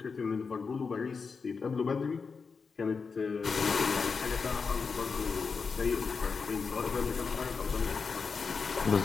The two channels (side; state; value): right; quieter; 5.1 dB